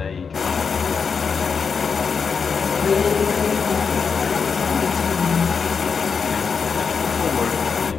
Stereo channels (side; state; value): right; quieter; 5.7 dB